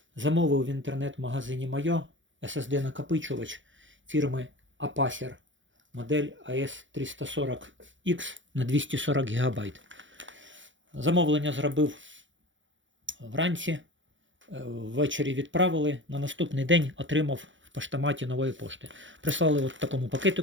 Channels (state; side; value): late; left; 0.55 ms